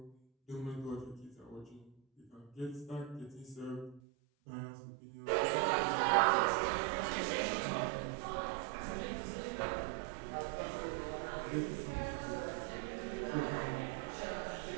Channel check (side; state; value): left; drops out; at 4.0 s